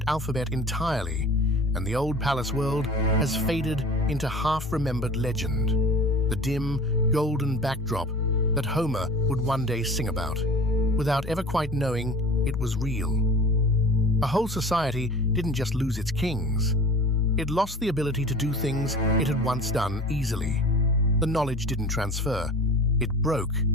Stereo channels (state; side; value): normal; both; correlation 0.40